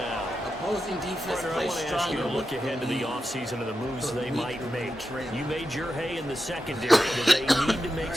Opposing defense Partner, I plays want to ask you stronger to look with ahead to the lead. offseason and the moves For they weak might and make. trail. You made your hay in the secondary. Do they need to make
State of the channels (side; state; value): both; normal; correlation 0.89